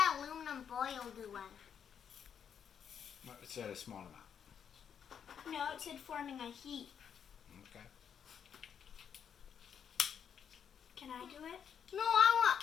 aluminum foil do? It said a small amount. No, it said forming a heat. Okay. Can I do it? No, I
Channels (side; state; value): right; quieter; 7.9 dB